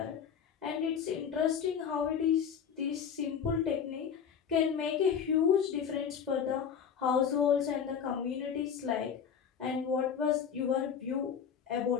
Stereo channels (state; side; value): quieter; right; 7.5 dB